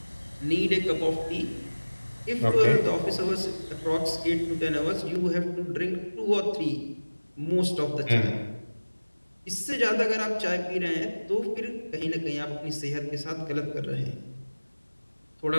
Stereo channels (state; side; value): inverted; both; correlation -1.00